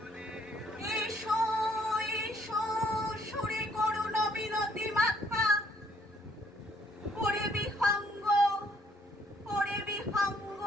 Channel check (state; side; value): normal; both; correlation 0.65